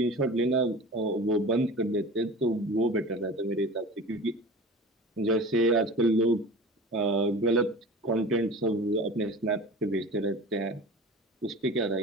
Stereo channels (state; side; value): normal; both; correlation 0.37